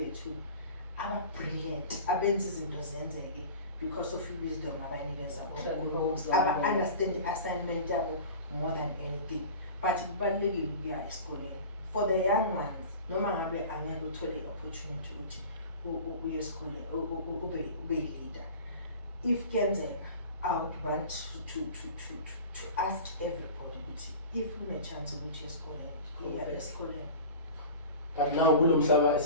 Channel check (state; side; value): inverted; both; correlation -0.37